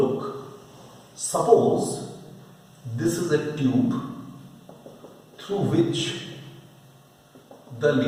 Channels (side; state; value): both; identical; correlation 1.00